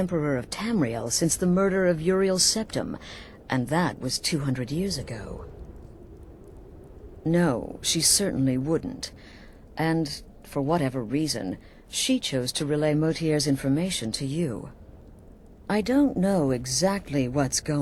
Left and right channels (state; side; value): identical; both; correlation 1.00